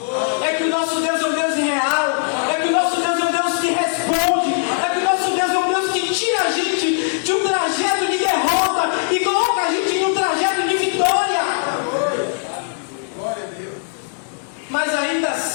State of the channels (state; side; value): silent; right; digital silence